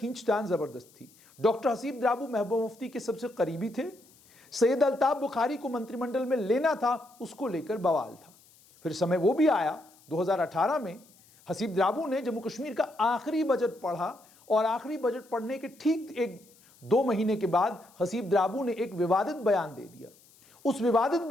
जबरदस्त थी। डॉक्टर हसीब द्राबू महबूबा मुफ्ती के सबसे करीबी थे। सैयद अल्ताफ बुखारी को मंत्रिमंडल में लेना था, उसको लेकर बवाल था। फिर समय वो भी आया 2018 में हसीब द्राबू ने जम्मू कश्मीर का आखिरी बजट पढ़ा और आखिरी बजट पढ़ने के ठीक 1-2 महीने के बाद हसीब द्राबू ने एक विवादित बयान दे दिया। उस विवादित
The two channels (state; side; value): noise; left; hiss, 28 dB below the sound